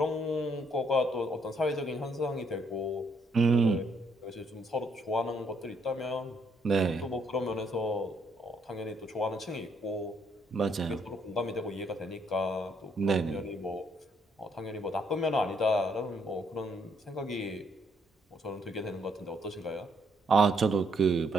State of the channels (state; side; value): normal; both; correlation 0.71